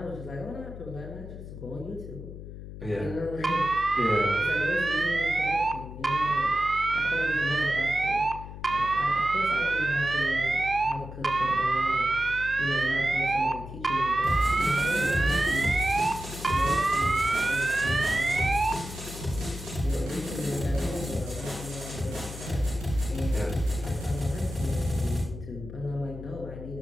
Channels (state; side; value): noise; left; hum, 11 dB below the sound